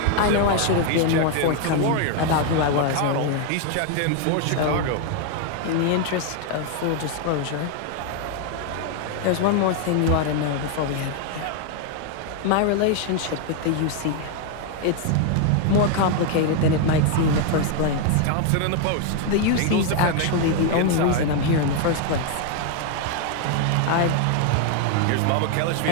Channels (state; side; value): different; both; correlation 0.00